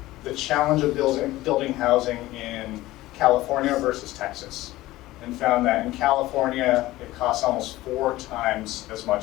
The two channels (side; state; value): right; quieter; 17.3 dB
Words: the challenge of building housing in California versus Texas, and found that in California it costs almost 4 times as